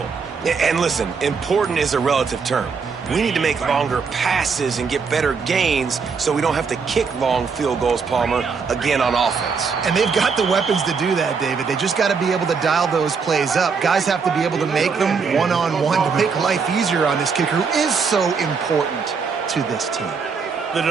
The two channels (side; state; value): left; quieter; 5.4 dB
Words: And listen, important is a relative term. We need to make longer passes and get better gains so we don't have to kick long field goals, Palmer, again on offense. And they've got the weapons to do that, David. They just got to be able to dial those plays up. Guys have to be able to make them one-on-one to make life easier on this kicker who is so important to this team. The